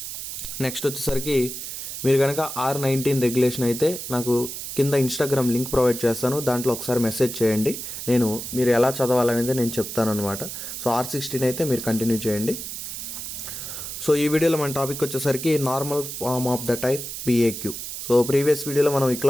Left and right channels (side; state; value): right; noise; hiss, 7 dB below the sound